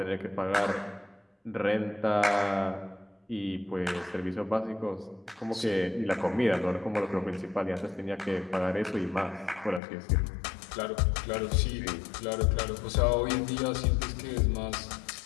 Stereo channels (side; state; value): right; drops out; at 9.8 s